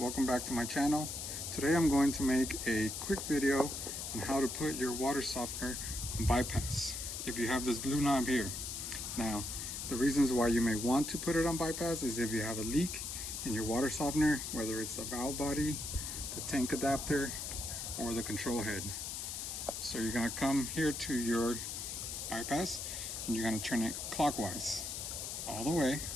back to my channel. Today I'm going to make a quick video on how to put your water softener on bypass if you have this blue knob here. Now the reasons why you may want to put it on bypass is if you have a leak in your water softener, whether it's the valve body, the tank adapter, or the control head. So you're going to come here to your bypass and you're going to turn it clockwise all the way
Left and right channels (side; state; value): left; noise; hiss, 5 dB below the sound